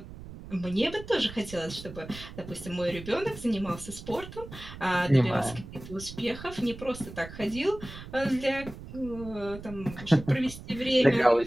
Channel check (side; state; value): right; noise; rumble, 13 dB below the sound